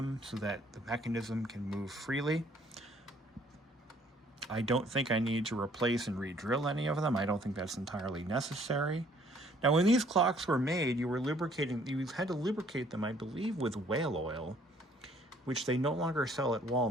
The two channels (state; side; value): normal; both; correlation 0.61